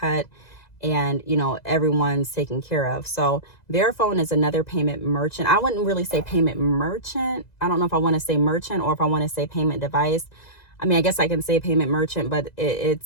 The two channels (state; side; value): late; right; 2.0 ms